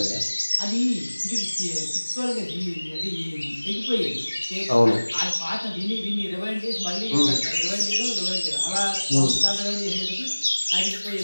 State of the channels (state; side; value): inverted; both; correlation -1.00